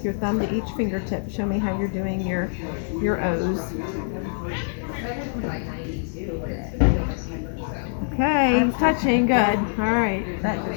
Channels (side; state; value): right; silent; 62 dB below the other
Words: your thumb to each fingertip. Show me how you're doing your O's. Okay, touching, good. All right. That